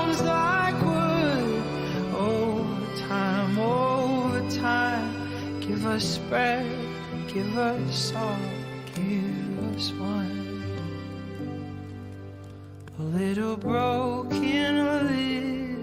like wood over time, over time. Give us bread, give us salt, give us wine. A little broken, a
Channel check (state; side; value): identical; both; correlation 1.00